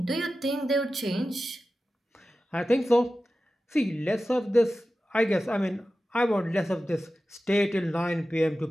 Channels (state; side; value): normal; both; correlation 0.94